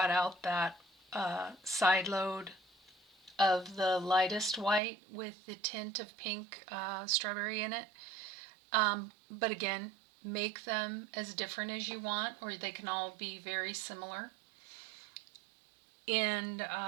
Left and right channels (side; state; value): left; drops out; at 4.8 s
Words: out that side load of the lightest white with the tint of pink strawberry in it. But again, make them as different as you want, or they can all be very similar. And